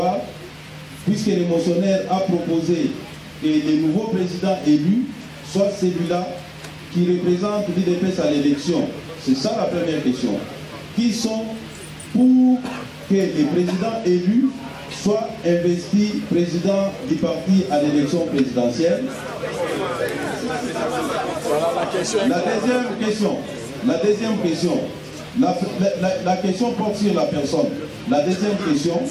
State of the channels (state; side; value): identical; both; correlation 1.00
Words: puisque le motionnaire a proposé que le nouveau président élu soit celui-là qui représentent l'UDPS à l'élection? C'est ça la première question. Qui sont pour que les présidents élus soient investis président du parti à l'élection présidentielle? La deuxième question, la question porte sur la personne. La deuxième question,